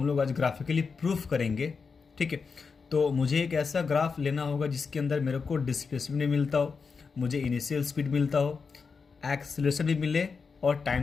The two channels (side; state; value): right; quieter; 5.2 dB